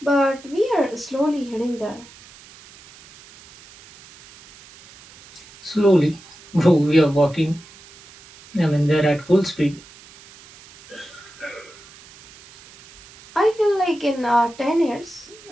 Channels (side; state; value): right; noise; hiss, 22 dB below the sound